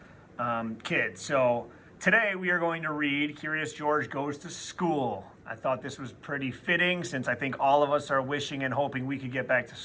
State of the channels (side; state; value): both; identical; correlation 1.00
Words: kid. So today we are going to read Curious George Goes to School. I thought this was pretty fitting since I think all of us are wishing and hoping we could get back to